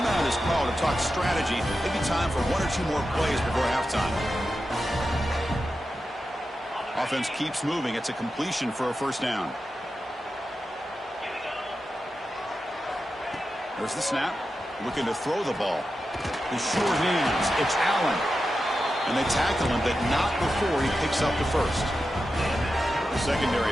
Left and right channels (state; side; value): normal; both; correlation 0.90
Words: is called to talk strategy. Maybe time for 1 or 2 more plays before halftime. Offense keeps moving. It's a completion for a first down. There's the snap. Looking to throw the ball. The short hands. It's Allen. And they tackle him, but not before he picks up the first. The